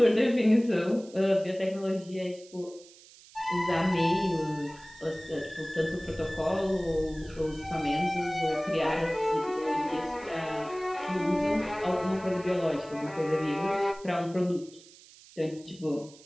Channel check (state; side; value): noise; right; hiss, 22 dB below the sound